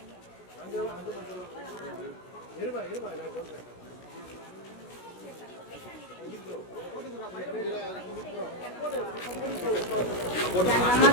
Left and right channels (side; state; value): right; late; 16 ms